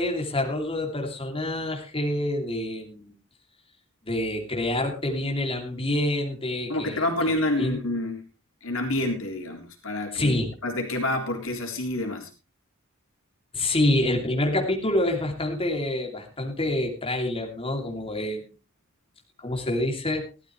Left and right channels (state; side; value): normal; both; correlation 0.47